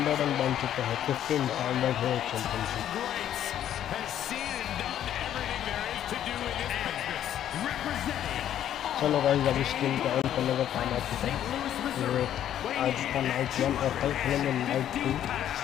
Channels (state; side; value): quieter; right; 10.9 dB